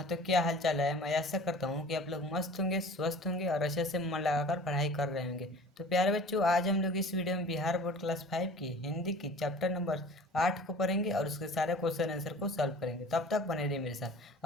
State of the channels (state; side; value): normal; both; correlation 0.44